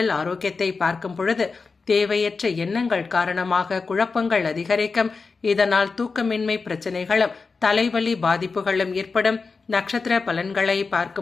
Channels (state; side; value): quieter; right; 4.5 dB